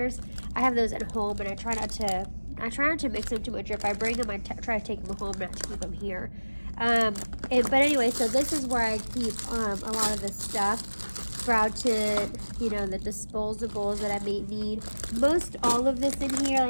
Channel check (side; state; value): both; inverted; correlation -1.00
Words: I have those at home, and I try not to mix them too much. If I bring them, I try to take them home, not to keep them here. But anyway, so this is where I keep a lot of the stuff. Brow tint, the disposables that I may need. Most all of this in here,